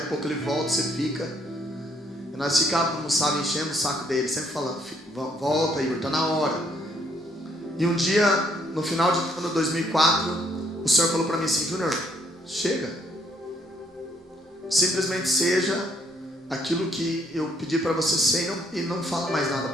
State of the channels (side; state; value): both; normal; correlation 0.68